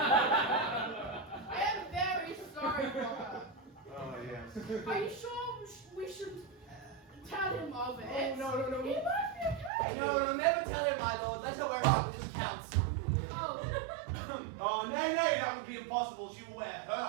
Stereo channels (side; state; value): left; drops out; at 9.7 s